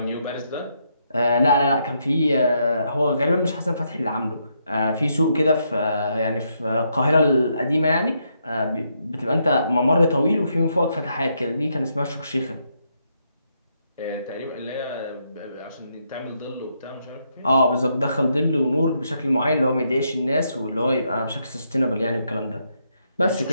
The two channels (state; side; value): inverted; both; correlation -0.78